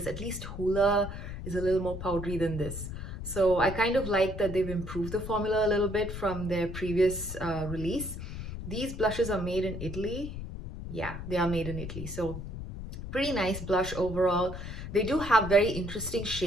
At least Hoola is a little more powdery than this. So I kind of like that they've improved the formula a little bit from their previous release. These blushes are made in Italy. Yeah, they are made in Italy. So pretty nice blush overall. They do have very interesting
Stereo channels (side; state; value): left; noise; rumble, 8 dB below the sound